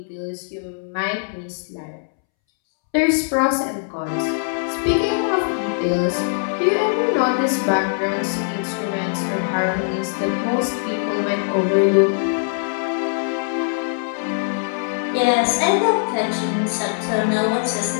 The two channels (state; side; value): silent; right; 65 dB below the other